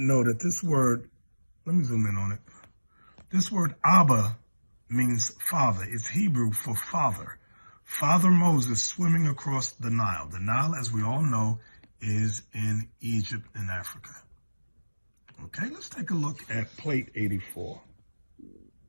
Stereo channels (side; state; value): both; inverted; correlation -1.00